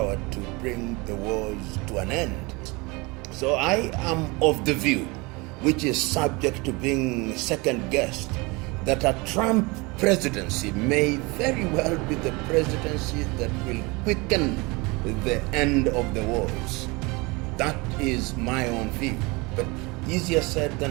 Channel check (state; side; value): quieter; left; 25.9 dB